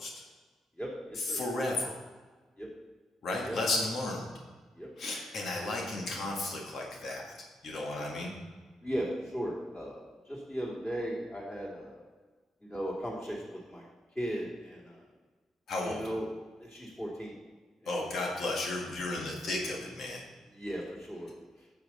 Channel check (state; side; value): normal; both; correlation 0.79